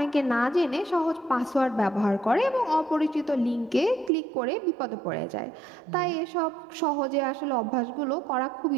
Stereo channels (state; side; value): drops out; left; at 4.1 s